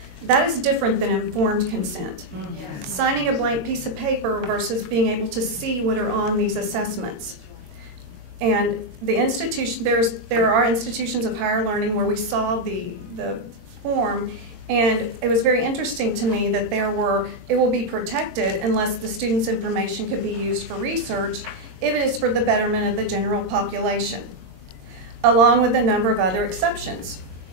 that is different than informed consent. Yes. Signing a blank piece of paper versus being able to see what are on these assessments. And the institution, there are institutions of higher learning where we saw the form, and it was very interesting to me that it will be protected unless the student's information could be used for research if it is for the betterment of the general population, along with a number of other exceptions.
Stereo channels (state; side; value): late; left; 22 ms